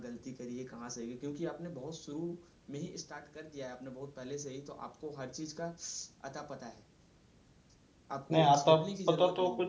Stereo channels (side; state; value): both; identical; correlation 1.00